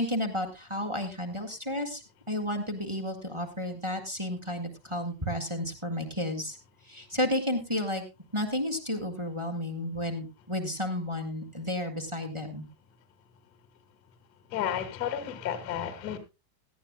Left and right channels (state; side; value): late; left; 1.4 ms